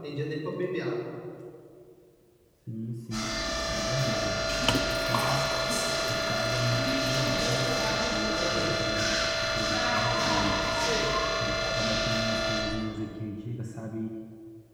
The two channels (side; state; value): both; identical; correlation 1.00